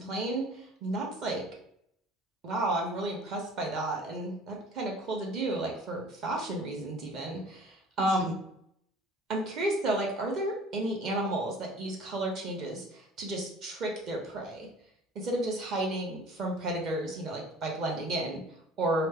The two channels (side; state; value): both; normal; correlation 0.47